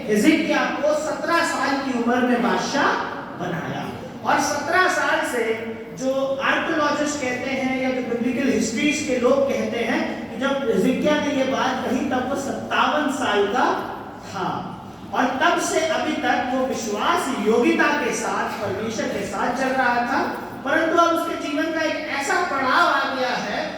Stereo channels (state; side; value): identical; both; correlation 1.00